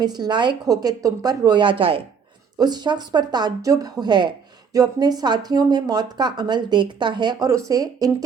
لائق ہو کہ تم پر رویا جائے۔ اس شخص پر تعجب ہے جو اپنے ساتھیوں میں موت کا عمل دیکھتا ہے اور اسے ان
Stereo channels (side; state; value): left; quieter; 6.3 dB